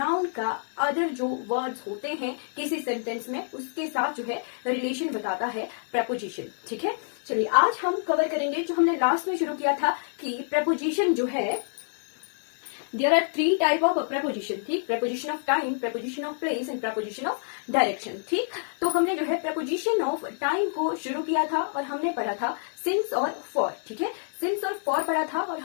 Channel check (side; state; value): right; silent; digital silence